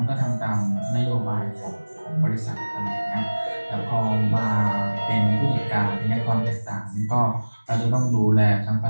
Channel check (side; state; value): both; inverted; correlation -1.00